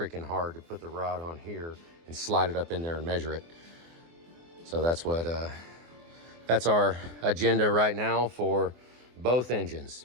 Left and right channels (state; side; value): late; left; 24 ms